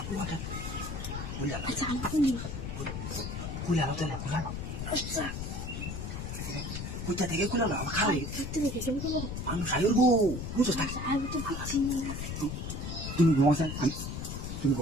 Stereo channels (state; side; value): noise; left; rumble, 5 dB below the sound